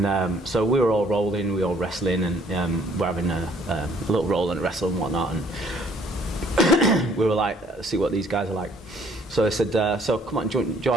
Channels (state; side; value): normal; both; correlation 0.61